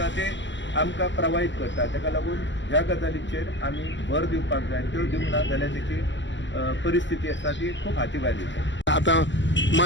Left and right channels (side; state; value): right; late; 0.54 ms